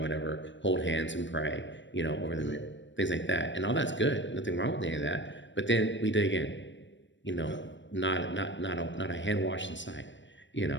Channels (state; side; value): late; right; 0.54 ms